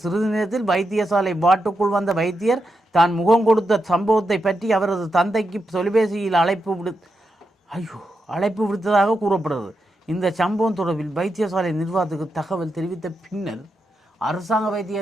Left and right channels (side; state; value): both; normal; correlation 0.86